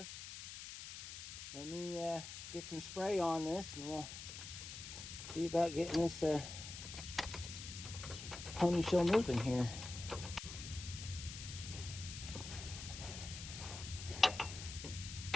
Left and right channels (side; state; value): left; noise; hiss, 9 dB below the sound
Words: Let me get some spray on this and we'll see about getting this pony show moving here.